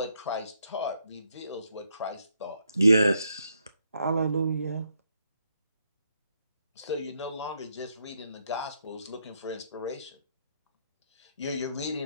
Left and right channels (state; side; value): inverted; both; correlation -0.76